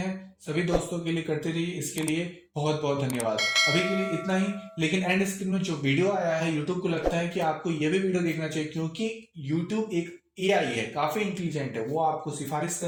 सभी दोस्तों के लिए करते रहिए, इसके लिए बहुत बहुत धन्यवाद। अभी के लिए इतना ही, लेकिन एंड स्क्रीन में जो वीडियो आया है, यूट्यूब को लगता है कि आपको यह भी वीडियो देखना चाहिए क्योंकि यूट्यूब एक AI है, काफी इंटेलिजेंट है, वो आपको सिफारिश कर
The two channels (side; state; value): both; identical; correlation 1.00